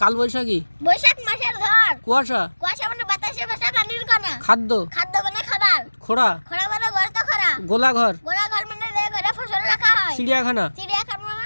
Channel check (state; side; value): inverted; both; correlation -1.00